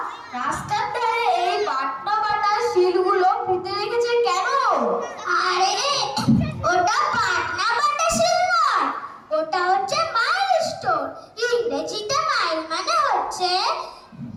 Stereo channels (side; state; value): both; identical; correlation 1.00